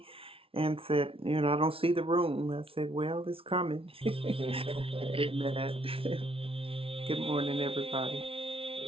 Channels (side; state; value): left; late; 0.26 ms